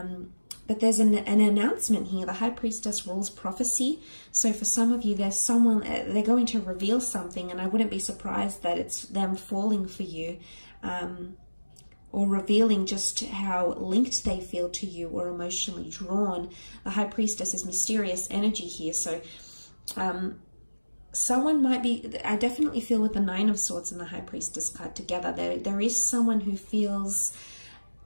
there's an announcement here. The High Priestess rules prophecy. So for some of you, there's someone, they're going to reveal something, and I wouldn't be surprised that it's them falling for you, or revealing just how linked they feel to you or emotionally drawn. The High Priestess is mysterious energy here. So someone might be, I definitely feel with the Nine of Swords and the High Priestess card together, there is someone who feels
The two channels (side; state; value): both; inverted; correlation -1.00